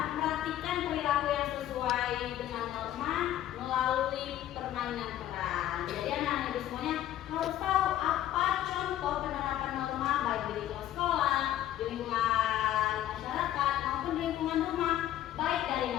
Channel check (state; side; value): quieter; right; 12.5 dB